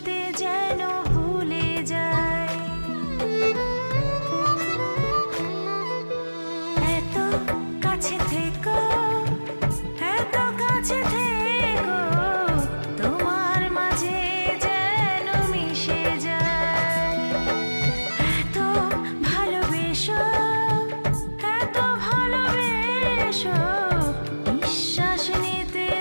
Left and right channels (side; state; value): both; inverted; correlation -1.00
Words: যেন ভুলে যায়। এত কাছে থেকো, এত কাছে থেকো, তোমার মাঝে যেন মিশে যায়। এত ভালোবেসো, এত ভালোবেসো, নিঃশ্বাস নিতে